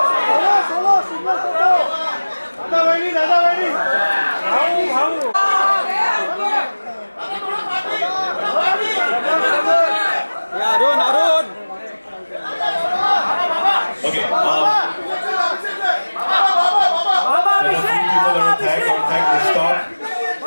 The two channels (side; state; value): both; inverted; correlation -1.00